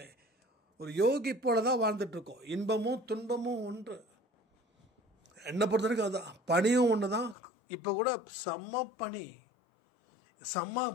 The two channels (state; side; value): drops out; right; at 7.4 s